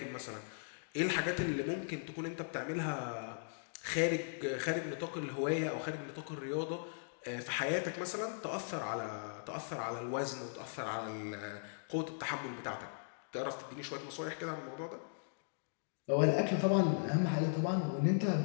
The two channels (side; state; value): right; silent; digital silence